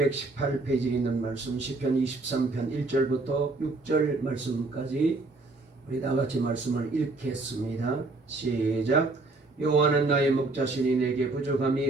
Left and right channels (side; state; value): left; quieter; 3.3 dB